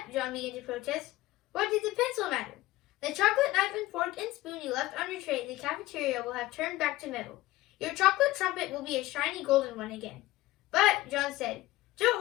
John began to protest, what did the pencil matter? The chocolate knife and fork and spoon you left on your tray in the cafeteria will have turned back to metal. Your chocolate trumpet will be a shiny golden one again. But, John said, don't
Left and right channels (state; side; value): quieter; right; 17.5 dB